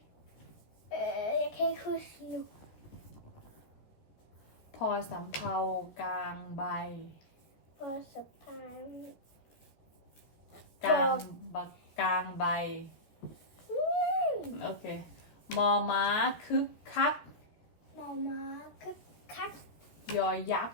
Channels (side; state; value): right; late; 14 ms